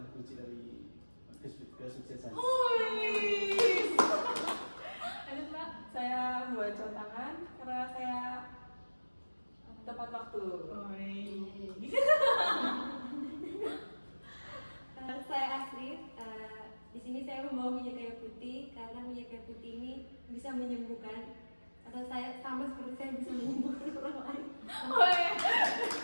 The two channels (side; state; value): both; inverted; correlation -1.00